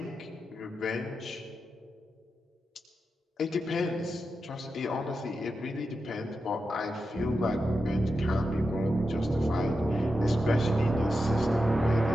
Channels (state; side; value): normal; both; correlation 0.89